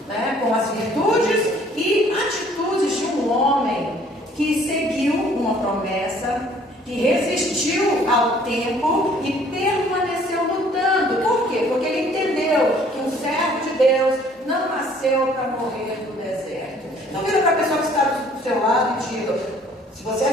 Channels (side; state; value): both; normal; correlation 0.58